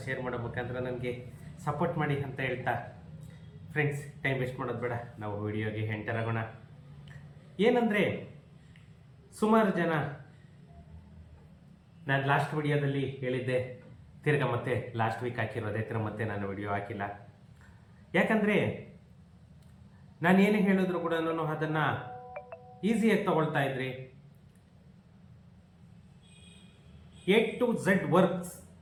ಶೇರ್ ಮಾಡೋ ಮುಖಾಂತರ ನನಗೆ ಸಪೋರ್ಟ್ ಮಾಡಿ ಅಂತ ಹೇಳ್ತಾ ಫ್ರೆಂಡ್ಸ್, ಟೈಮ್ ವೇಸ್ಟ್ ಮಾಡೋದು ಬೇಡ, ನಾವು ವಿಡಿಯೋಗೆ ಎಂಟರ್ ಆಗೋಣ. ಏನಂದರೆ, ಸುಮಾರು ಜನ ನಾನು ಲಾಸ್ಟ್ ವಿಡಿಯೋದಲ್ಲಿ ಹೇಳಿದ್ದೆ, ತಿರ್ಗಾ ಮತ್ತೆ ಲಾಸ್ಟ್ ವೀಕ್ ಹಾಕಿರೋದೇ ಮತ್ತೆ ನಾನು ವಿಡಿಯೋ ಹಾಕಿಲ್ಲ. ಯಾಕಂದರೆ ನಾನು ಏನೇ ಹೇಳಿದ್ರು ಕೂಡ ಅದನ್ನು ಈಸಿಯಾಗಿ ತಗೊಳ್ತಾ ಇದ್ರಿ. A to Z ವರ್ಕ್ಸ್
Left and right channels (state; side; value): identical; both; correlation 1.00